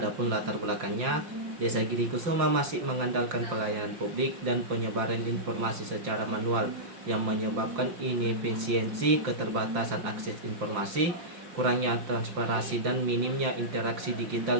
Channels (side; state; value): left; late; 5.7 ms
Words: latar belakangnya, Desa Giri Kusuma masih mengandalkan pelayanan publik dan penyebaran informasi secara manual yang menyebabkan inefisiensi, keterbatasan akses informasi, kurangnya transparansi dan minimnya interaksi